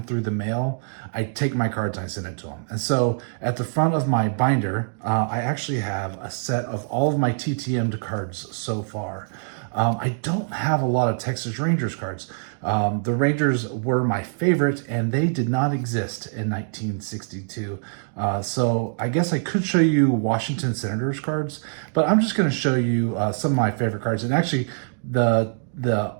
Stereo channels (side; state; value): left; silent; digital silence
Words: through the mail, I take my cards and I send it to them. And so at the front of my binder, I actually have a set of all of my TTM'd cards so far. I don't have a lot of Texas Rangers cards. The Rangers were my favorite, and they did not exist in 1962. So I guess I could show you Washington Senators cards, but I'm just going to show you some of my favorite cards. And actually, the